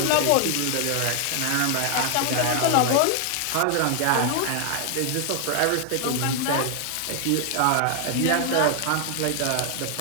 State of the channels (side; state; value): both; different; correlation 0.00